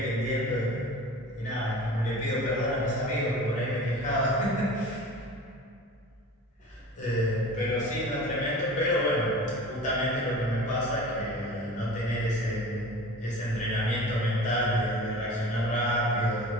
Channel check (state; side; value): normal; both; correlation 0.38